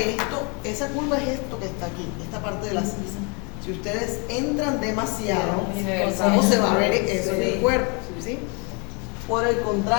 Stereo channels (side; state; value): right; quieter; 33.2 dB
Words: esa curva es esto que está aquí, esta parte de la sisa. Si ustedes entran demasiado, ¿cómo se va a ver eso en el cuerpo? ¿Sí? Por el